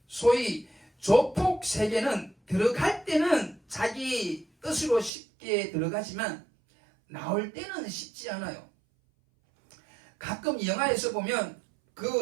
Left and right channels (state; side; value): drops out; left; at 5.1 s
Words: 소위 조폭 세계는 들어갈 때는 자기 뜻으로 쉽게 들어가지만 나올 때는 쉽지 않아요. 가끔 영화에서 보면